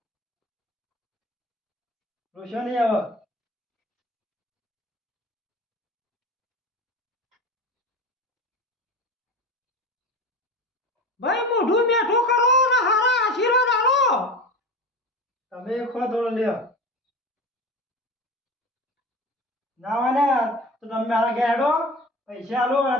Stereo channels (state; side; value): normal; both; correlation 0.31